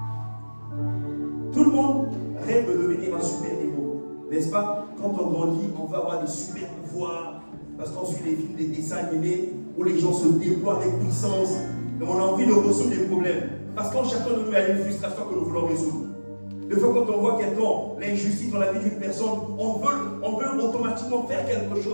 Tout le monde rêve de devenir un super héros, n'est-ce pas? Quand on grandit, on va avoir des super pouvoirs, parce qu'on suit des films, des dessins animés, où les gens se déploient avec puissance, et on a envie de résoudre des problèmes. Parce qu'en chacun de nous, il y a une frustration que nous voulons résoudre. Des fois, quand on voit quelqu'un, l'injustice dans la vie d'une personne, on veut automatiquement faire quelque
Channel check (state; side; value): inverted; both; correlation -1.00